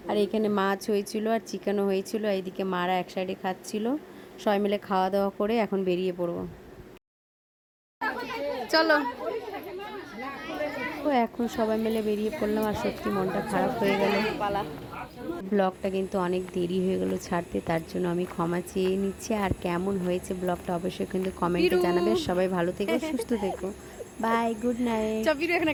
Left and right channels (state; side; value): identical; both; correlation 1.00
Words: আর এখানে মাছ হয়েছিল আর চিকেনও হয়েছিল। এইদিকে মারা এক সাইডে খাচ্ছিল। সবাই মিলে খাওয়া দাওয়া করে এখন বেরিয়ে পড়বো। চলো, তো এখন সবাই মিলে বেরিয়ে পড়লাম। আর সত্যি মনটা খারাপ হয়ে গেল। ব্লগটা কিন্তু অনেক দেরি হয়ে গেল ছাড়তে, তার জন্য আমি ক্ষমা চেয়ে নিচ্ছি। আর কেমন হয়েছে ব্লগটা অবশ্যই কিন্তু কমেন্টে জানাবে। সবাই ভালো থেকো, সুস্থ থেকো, বাই, গুড নাইট। চবির এখন